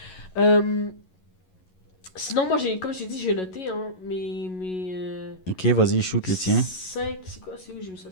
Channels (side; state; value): right; late; 11 ms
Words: Sinon, moi, comme je t'ai dit, j'ai noté, hein, Ok, vas-y, shoot le tien. 5, c'est quoi, c'est où j'ai mis ça?